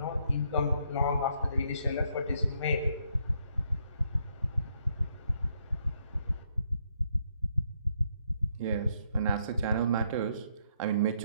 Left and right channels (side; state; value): both; inverted; correlation -0.74